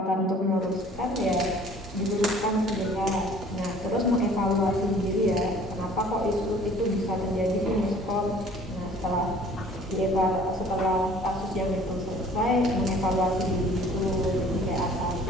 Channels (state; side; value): normal; both; correlation 0.52